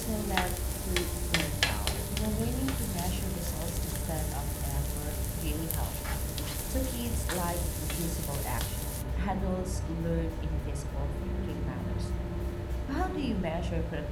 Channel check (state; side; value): identical; both; correlation 1.00